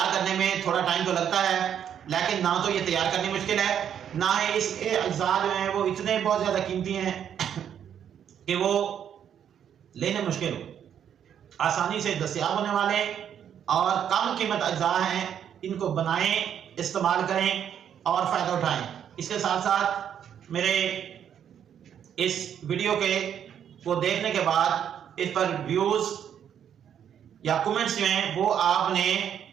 کرنے میں تھوڑا ٹائم تو لگتا ہے، لیکن نہ تو یہ تیار کرنی مشکل ہے، نہ ہی اس کے اجزاء جو ہیں وہ اتنے بہت زیادہ قیمتی ہیں کہ وہ لینے مشکل ہو۔ آسانی سے دستیاب ہونے والے اور کم قیمت اجزاء ہیں، ان کو بنائیں، استعمال کریں اور فائدہ اٹھائیں۔ اس کے ساتھ ساتھ میرے اس ویڈیو کو دیکھنے کے بعد اس پر ویوز یا کمنٹس جو ہیں وہ آپ نے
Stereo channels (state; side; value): quieter; left; 9.0 dB